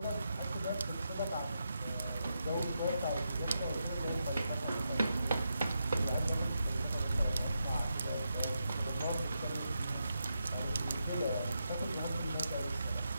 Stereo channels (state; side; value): inverted; both; correlation -0.85